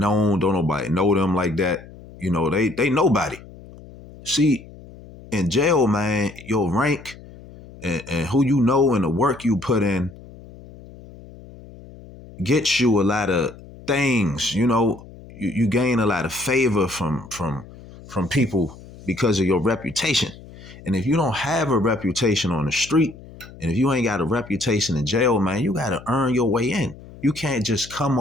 Don't nobody know them like that. They nobody. See, in jail, man, your rank and who you know and the work you put in gets you a lot of things. You gain a lot of favor from people because of your reputation. And if you don't have a reputation on the street, and if you ain't got a reputation in jail, man, you got to earn your way in. You can't just come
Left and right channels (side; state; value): left; noise; hum, 19 dB below the sound